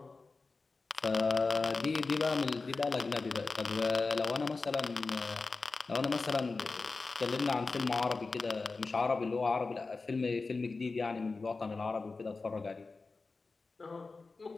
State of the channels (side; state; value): right; quieter; 3.9 dB